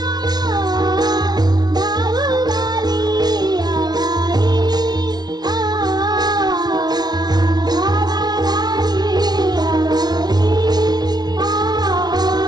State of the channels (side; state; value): left; late; 0.19 ms